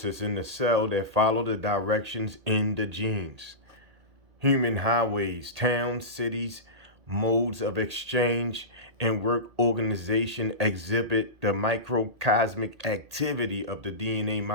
in the cell that follow the directions in the genes. Human highways, towns, cities, modes of exchange, and work organization exhibit the microcosmic activity of the DNA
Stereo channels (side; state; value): left; late; 1.8 ms